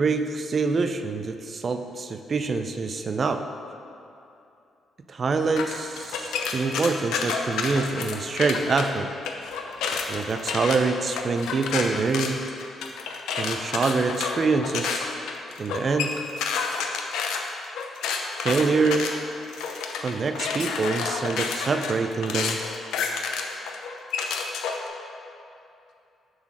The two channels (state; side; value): normal; both; correlation 0.75